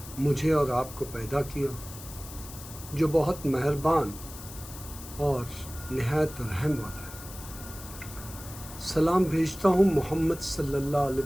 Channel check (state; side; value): noise; left; hiss, 14 dB below the sound